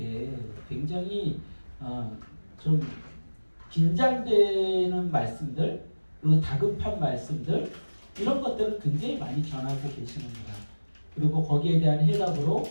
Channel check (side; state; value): both; inverted; correlation -1.00